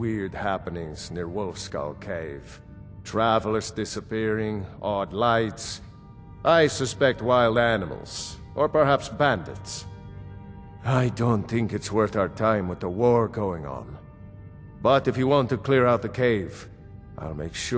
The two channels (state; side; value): identical; both; correlation 1.00